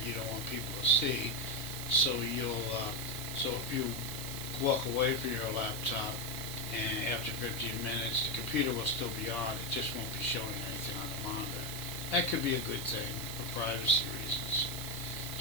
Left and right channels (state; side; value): noise; right; hiss, 8 dB below the sound